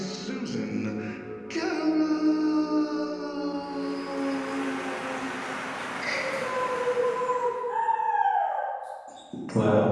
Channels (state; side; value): identical; both; correlation 1.00